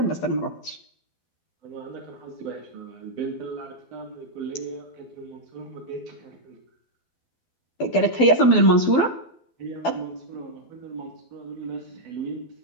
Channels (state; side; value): late; right; 12 ms